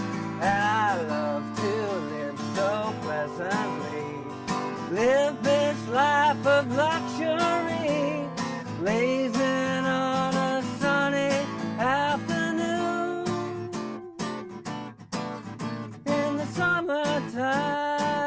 And I love to live so pleasantly, live this life of luxury, blazing on a sunny afternoon. In the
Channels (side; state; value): both; identical; correlation 1.00